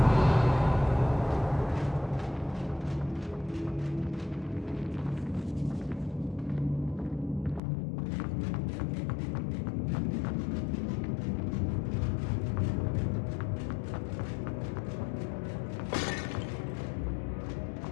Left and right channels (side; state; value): right; drops out; at 7.6 s